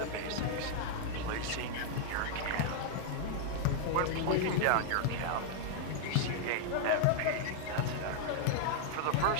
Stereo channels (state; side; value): different; both; correlation -0.01